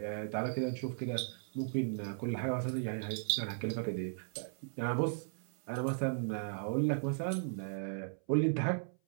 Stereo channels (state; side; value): silent; left; 53 dB below the other